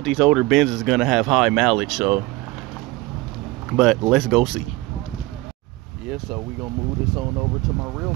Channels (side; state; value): left; quieter; 20.1 dB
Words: these older Benz is gonna have high mileage, so, but let's go see. Yeah, so we gonna move this on over to my real